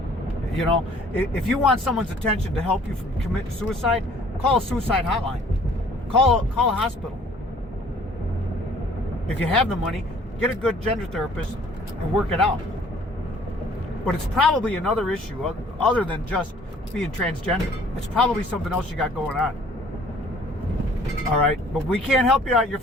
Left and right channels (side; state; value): both; normal; correlation 0.56